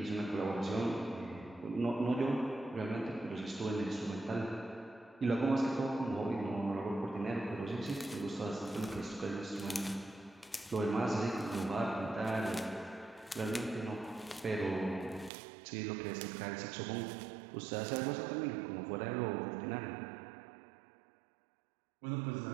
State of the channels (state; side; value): drops out; left; at 15.3 s